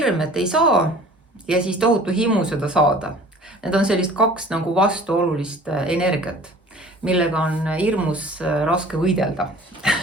et ei saa, ja siis tohutu himu seda saada. Need on sellist kaks nagu vastuolulist energiat, millega on hirmus raske võidelda.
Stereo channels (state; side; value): normal; both; correlation 0.47